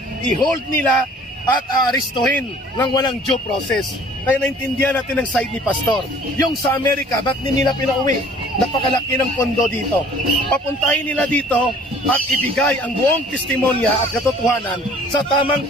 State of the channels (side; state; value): both; normal; correlation 0.52